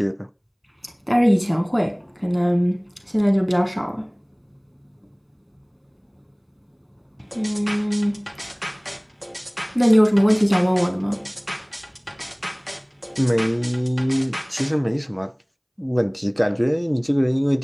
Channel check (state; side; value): identical; both; correlation 1.00